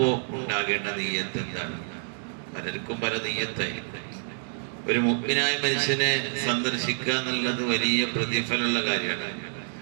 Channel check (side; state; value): left; silent; digital silence